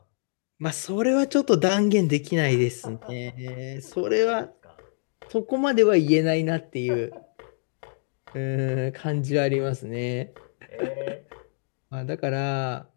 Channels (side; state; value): right; silent; digital silence